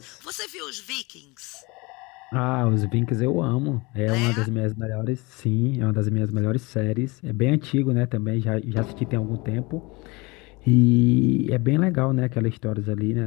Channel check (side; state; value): right; quieter; 25.5 dB